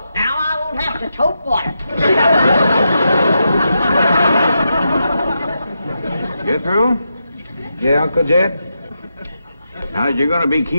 Now I won't have to tote water. Jethro? Yeah, Uncle Jed? Now, you're going to be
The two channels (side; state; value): both; inverted; correlation -0.85